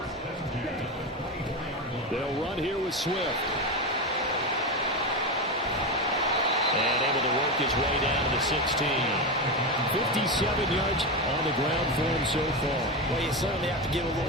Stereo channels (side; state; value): both; normal; correlation 0.16